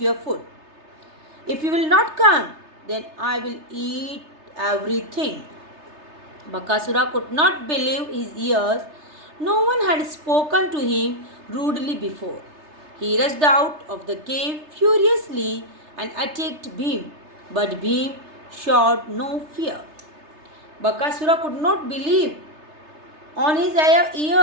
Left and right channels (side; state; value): left; late; 3.3 ms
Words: food. If you will not come, then I will eat everything. Bakasura could not believe his ears. No one had spoken to him rudely before. He rushed out of the cave furiously and attacked Bhim, but Bhim showed no fear. Bakasura could not believe on his